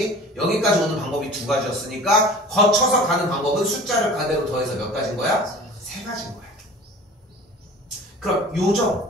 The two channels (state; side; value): normal; both; correlation 0.42